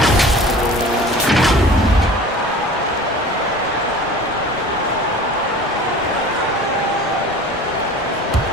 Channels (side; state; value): both; normal; correlation 0.41